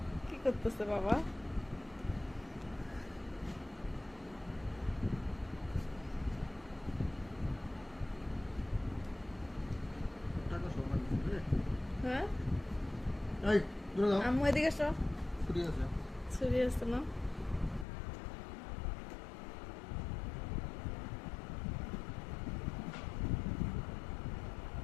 কি করতেছে বাবা? হ্যাঁ আম্মু এদিকে এসো। ছুরি আছে না?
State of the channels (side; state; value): right; drops out; at 17.9 s